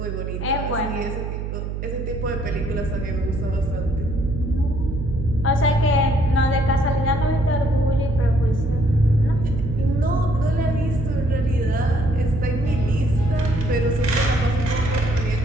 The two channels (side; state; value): right; noise; hum, 5 dB below the sound